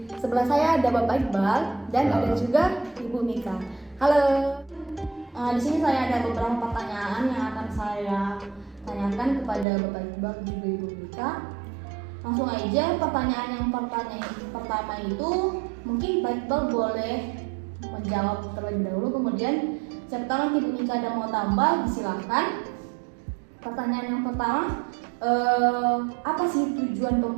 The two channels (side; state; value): left; drops out; at 9.7 s